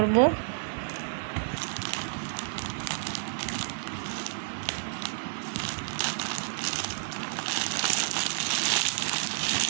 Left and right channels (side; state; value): left; silent; digital silence